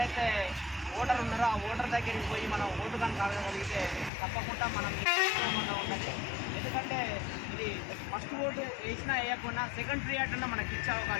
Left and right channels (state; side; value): drops out; right; at 4.1 s